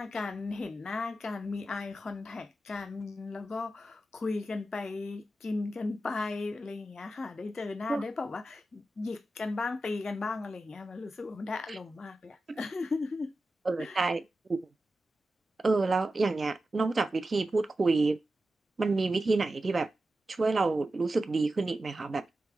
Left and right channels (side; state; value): both; normal; correlation 0.92